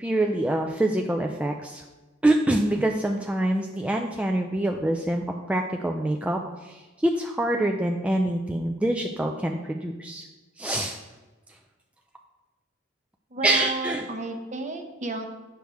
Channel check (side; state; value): both; normal; correlation 0.76